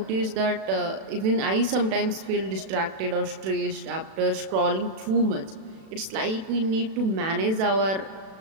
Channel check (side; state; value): left; late; 36 ms